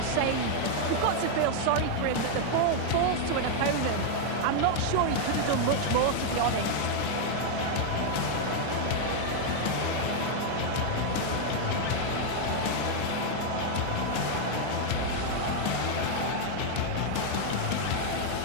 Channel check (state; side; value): different; both; correlation 0.00